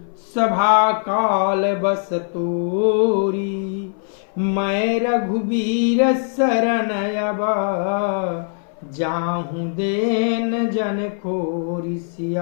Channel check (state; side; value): silent; right; 59 dB below the other